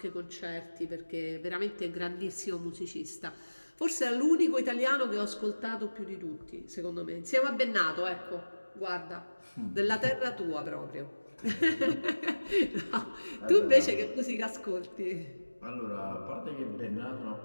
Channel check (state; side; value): inverted; both; correlation -1.00